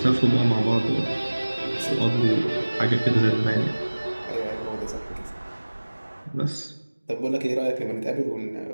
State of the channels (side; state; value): both; inverted; correlation -1.00